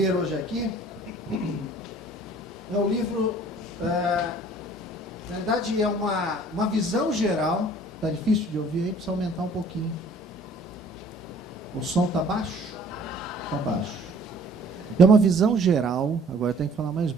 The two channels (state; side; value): normal; both; correlation 0.54